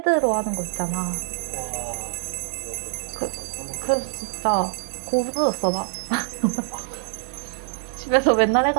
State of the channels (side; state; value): left; silent; digital silence